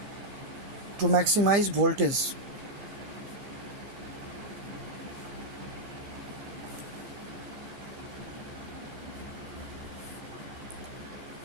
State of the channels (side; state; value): left; late; 15 ms